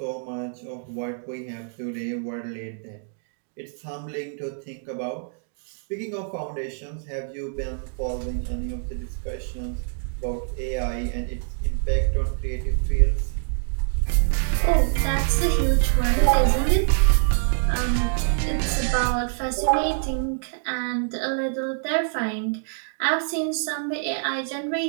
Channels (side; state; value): left; silent; digital silence